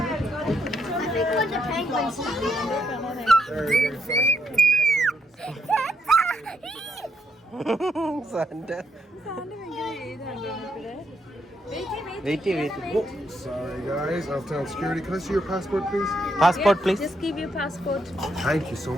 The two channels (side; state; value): both; normal; correlation 0.77